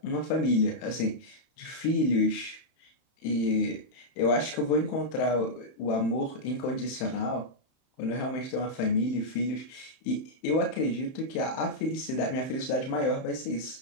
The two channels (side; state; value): right; late; 31 ms